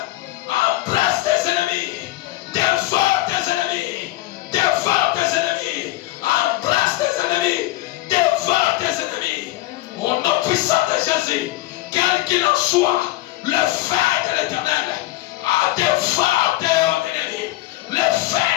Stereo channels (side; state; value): right; quieter; 17.5 dB